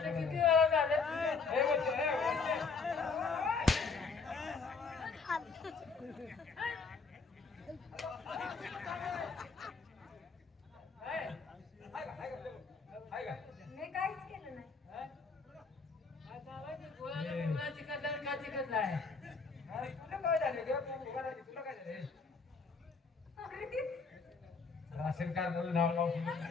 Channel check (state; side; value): quieter; right; 4.7 dB